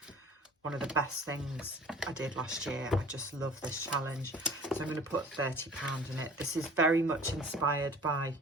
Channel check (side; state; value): both; normal; correlation 0.46